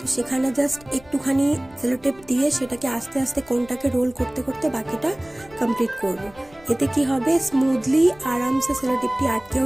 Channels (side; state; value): left; noise; rumble, 25 dB below the sound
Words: সেখানে জাস্ট একটুখানি সেলোটেপ দিয়ে সেটাকে আস্তে আস্তে কোনটাকে রোল করতে করতে বাকিটা কমপ্লিট করব। এতে কি হবে, স্মুথলি আরামসে সেলোটেপটি আটকেও